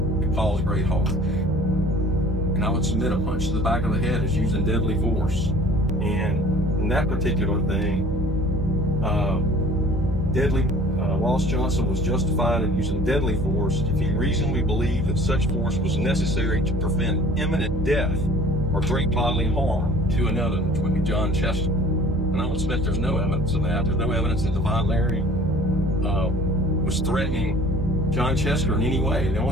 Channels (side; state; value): both; normal; correlation 0.49